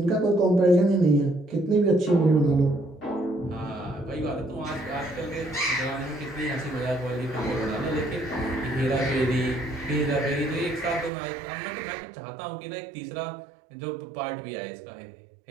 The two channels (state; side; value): drops out; left; at 11.1 s